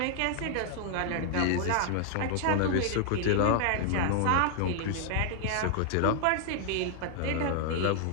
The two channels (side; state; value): both; different; correlation 0.00